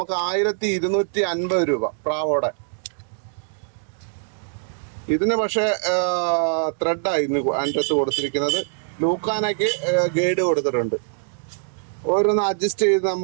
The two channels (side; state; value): left; silent; digital silence